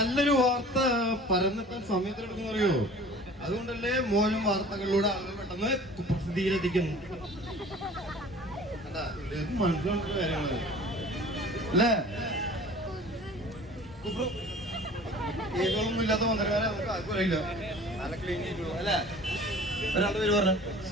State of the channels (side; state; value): both; normal; correlation 0.45